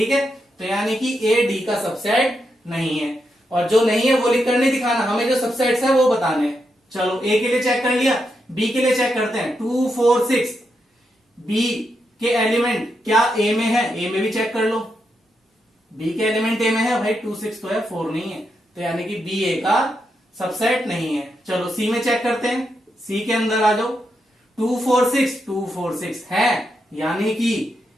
है। तो यानी कि ए डी का सबसेट नहीं है, और जो नहीं है वो लिख कर नहीं दिखाना, हमें जो सबसेट्स है वो बताने हैं। चलो ए के लिए चेक कर लिया, बी के लिए चेक करते हैं। 2 4 6 बी के एलिमेंट क्या ए में है, ए में भी चेक कर लो। बी के एलिमेंट ए में है भाई, 2 6 तो है, 4 नहीं है, तो यानी कि बी ए का सबसेट नहीं है। चलो सी में चेक करते हैं, सी के अंदर आ जाओ। 2 4 6 है, यानी कि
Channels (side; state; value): both; normal; correlation 0.83